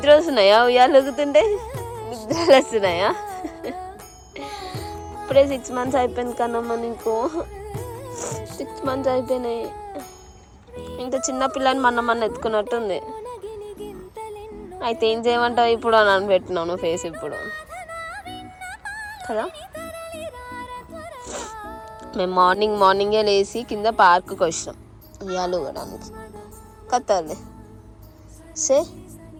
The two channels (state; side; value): identical; both; correlation 1.00